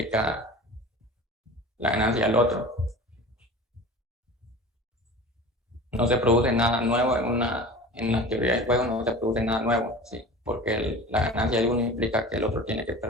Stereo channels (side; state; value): both; normal; correlation 0.37